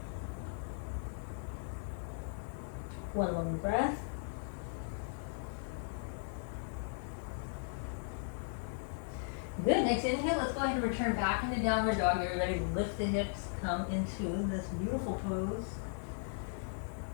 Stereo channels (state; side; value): silent; right; 53 dB below the other